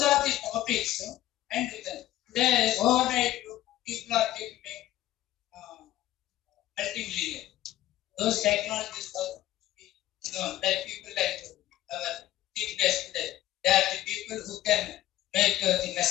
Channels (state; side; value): quieter; right; 14.4 dB